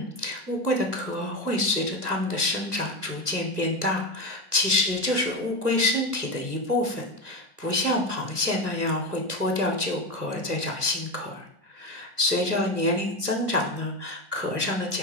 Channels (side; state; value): left; late; 1.3 ms